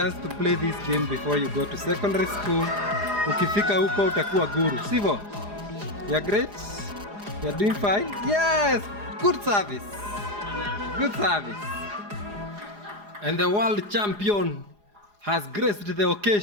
to play this game before you go to secondary school. Ukifika huko utakuwa guru, sivyo? You're great. You're doing fine. Yes, good service. And the world champion has graced the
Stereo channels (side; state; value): left; late; 4.9 ms